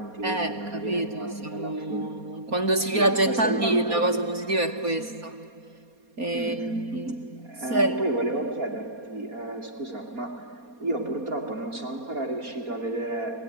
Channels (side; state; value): left; late; 4.2 ms